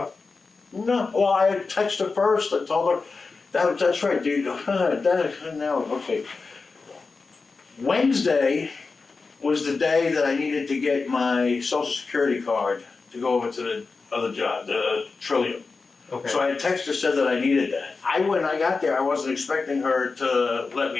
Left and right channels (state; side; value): quieter; right; 4.3 dB